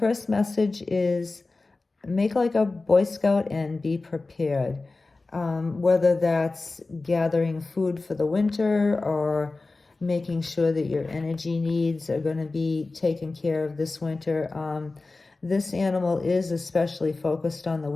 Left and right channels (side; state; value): right; quieter; 3.5 dB